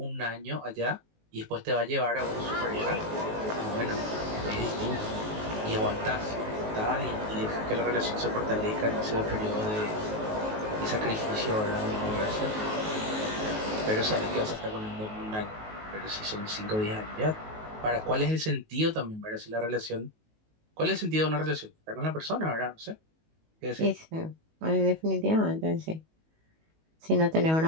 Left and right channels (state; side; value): late; left; 19 ms